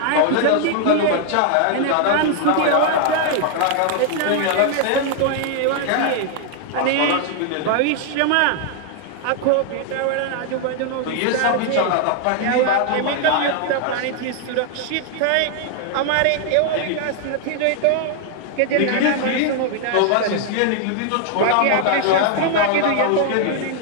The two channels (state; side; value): different; both; correlation 0.00